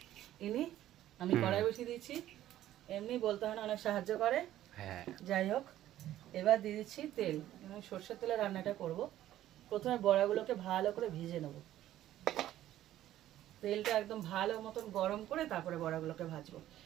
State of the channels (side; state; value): left; quieter; 13.2 dB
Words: ইনি, আমি কড়াই বসিয়ে দিচ্ছি। এমনি বলতে হয় না, অনেক সাহায্য করে। যাই হোক, এবার দিয়ে দিচ্ছি তেল, আমি সর্ষের তেলে রান্নাটা করব। প্রথমে বড়াগুলোকে ভালো করে ভিজে নেব, তেলটা একদম ভালো মতন গরম করে তারপরে বড়াগুলোকে ভাজবো।